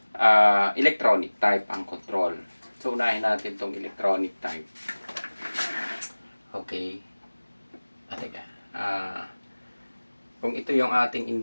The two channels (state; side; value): inverted; both; correlation -1.00